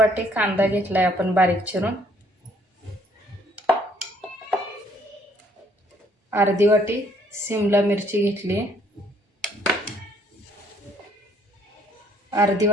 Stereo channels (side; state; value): both; normal; correlation 0.64